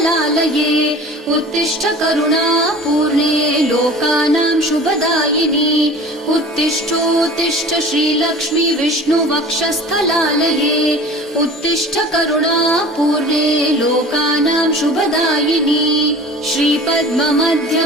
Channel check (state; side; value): normal; both; correlation 0.41